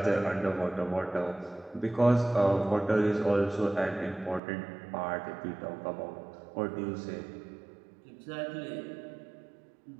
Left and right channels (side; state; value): left; drops out; at 4.4 s